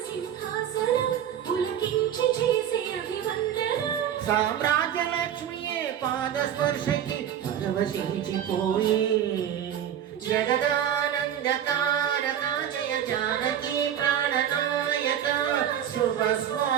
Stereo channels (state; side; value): quieter; left; 9.8 dB